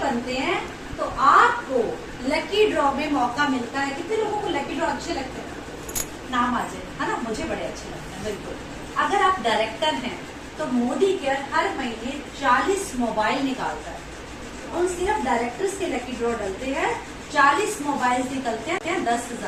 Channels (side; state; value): both; identical; correlation 1.00